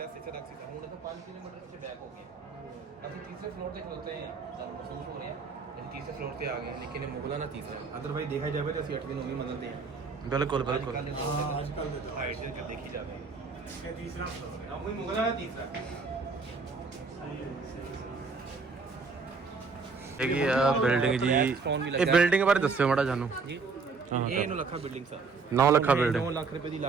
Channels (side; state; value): left; quieter; 4.6 dB